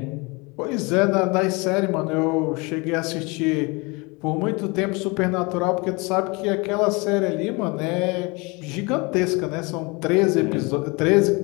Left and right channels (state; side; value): quieter; right; 27.5 dB